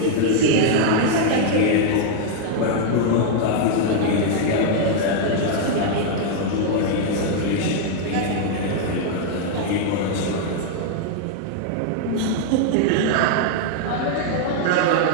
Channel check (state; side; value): different; both; correlation -0.01